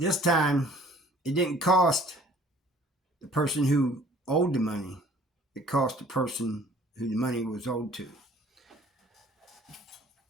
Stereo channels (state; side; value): normal; both; correlation 0.53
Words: time it didn't cost the person who owed the money. It cost the person who the money was owed to.